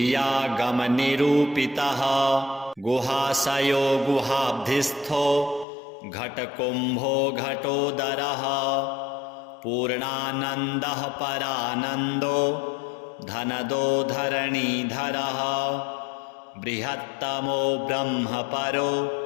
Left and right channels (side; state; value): right; drops out; at 5.7 s